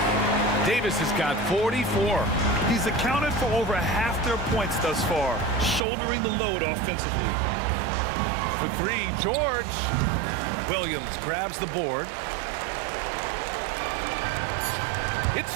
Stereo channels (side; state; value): left; drops out; at 5.8 s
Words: Davis has got 44. He's accounted for over half their points thus far, shouldering the load offensively. For three, George. Williams grabs the board. It's